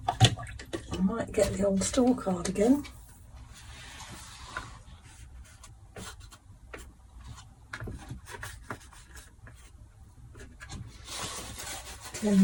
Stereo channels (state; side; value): identical; both; correlation 1.00